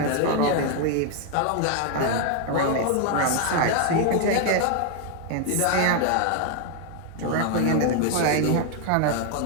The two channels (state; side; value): different; both; correlation 0.01